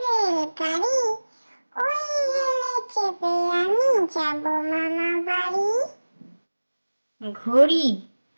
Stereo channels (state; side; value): inverted; both; correlation -1.00